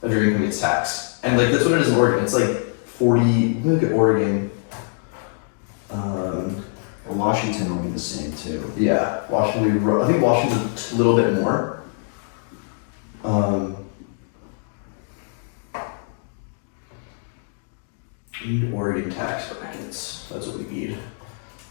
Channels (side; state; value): right; silent; 63 dB below the other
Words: of your income gets taxed. And like that's what it is in Oregon. It's like 40, look at Oregon. Washington will be the same too. Yeah, Washington, I think Washington's a little bit more. We need Oregon tax brackets. That's what we need.